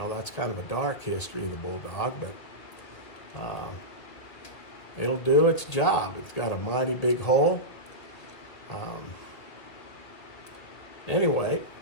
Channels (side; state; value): right; late; 2.0 ms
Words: kind of a dark history of the Bulldog, but it'll do its job. It's got a mighty big hole. Anyway,